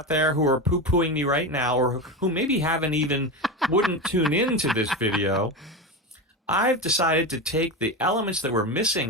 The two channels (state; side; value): normal; both; correlation 0.20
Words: there who are poo-pooing me right now, or who maybe wouldn't tune into this video, I've decided to take the elements that were